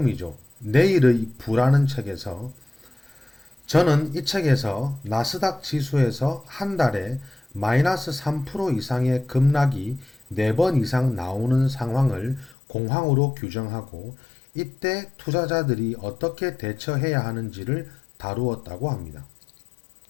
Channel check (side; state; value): right; drops out; at 12.6 s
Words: 내일의 부라는 책에서 저는 이 책에서 나스닥 지수에서 한 달에 마이너스 3% 이상의 급락이 4번 이상 나오는 상황을 공황으로 규정하고 이때 투자자들이 어떻게 대처해야 하는지를 다루었다고 합니다.